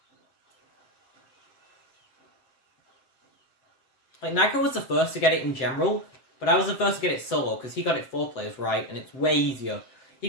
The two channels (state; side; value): late; right; 7.8 ms